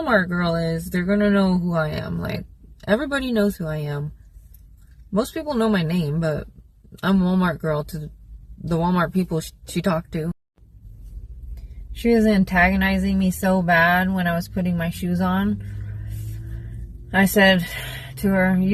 girl is, they're going to know who I am. Like, everybody knows who I am. Most people know my name, but I'm Walmart girl to the Walmart people she talked to. She was antagonizing me so bad when I was putting my shoes on. I said to her,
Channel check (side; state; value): both; identical; correlation 1.00